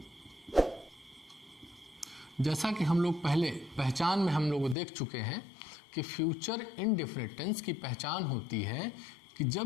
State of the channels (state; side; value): drops out; right; at 4.8 s